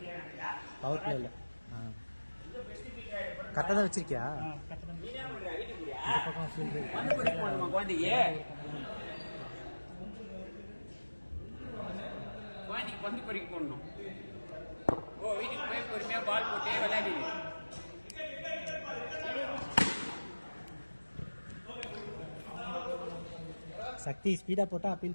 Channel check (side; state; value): both; inverted; correlation -1.00